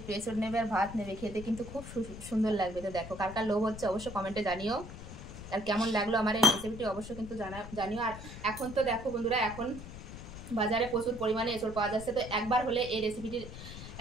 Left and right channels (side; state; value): left; noise; rumble, 12 dB below the sound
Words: এঁচড় নেবে, আর ভাত নেবে, খেতে কিন্তু খুব সুন্দর লাগবে। তো দেখো কার কার লোভ হচ্ছে অবশ্যই কমেন্টে জানিও, আর কেমন লাগলো আমার এই রেসিপিটি অবশ্যই কিন্তু জানিও। আর এখন তো দেখো বন্ধুরা এখন বাজারে প্রচুর পরিমাণে এঁচড় পাওয়া যাচ্ছে। তো একবার হলে এই রেসিপিটি